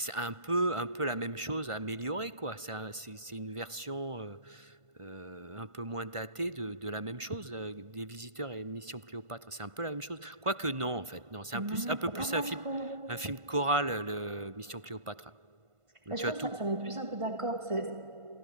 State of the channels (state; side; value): late; left; 1.5 ms